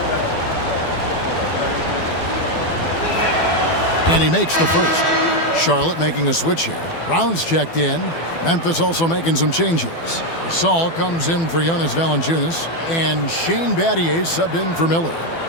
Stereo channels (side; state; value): right; late; 12 ms